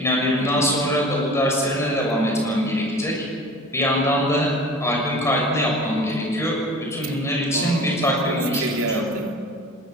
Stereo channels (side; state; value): both; normal; correlation 0.40